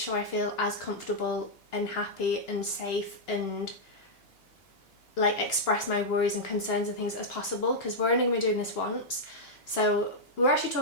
I feel as comfortable and happy and safe and like express my worries and concerns and things as possible, because we're only going to be doing this once. So we were actually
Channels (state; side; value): late; right; 2.9 ms